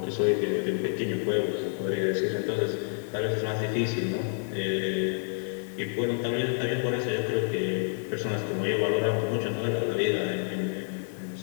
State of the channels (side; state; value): right; silent; 59 dB below the other